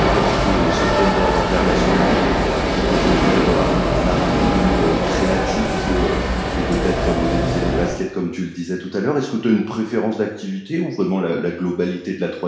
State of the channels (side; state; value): both; identical; correlation 1.00